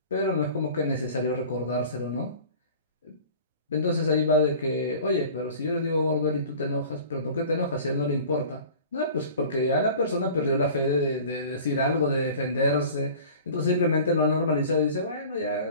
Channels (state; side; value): inverted; both; correlation -0.43